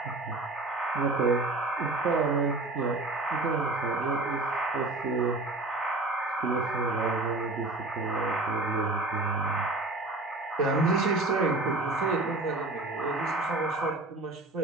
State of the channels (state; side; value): quieter; left; 3.0 dB